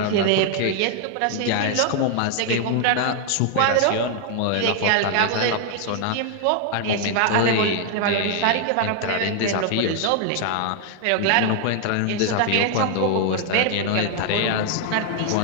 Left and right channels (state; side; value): different; both; correlation 0.00